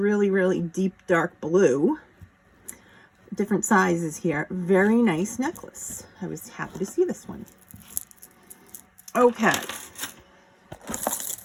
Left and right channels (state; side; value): identical; both; correlation 1.00